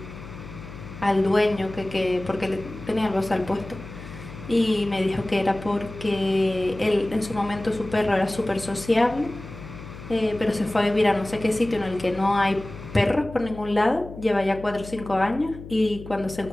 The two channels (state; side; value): noise; left; hum, 14 dB below the sound